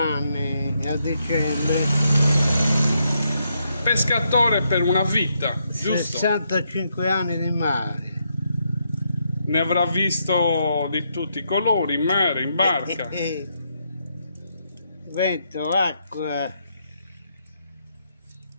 a dicembre. Pescatore per una vita, giusto? 65 anni di mare. Ne avrà visto di tutti i colori, in mare, in barca. Vento, acqua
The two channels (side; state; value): both; inverted; correlation -0.79